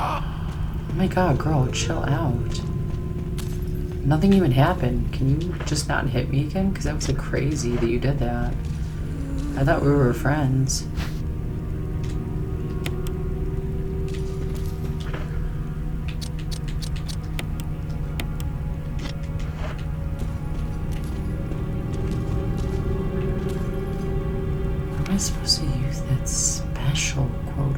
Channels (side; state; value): both; identical; correlation 1.00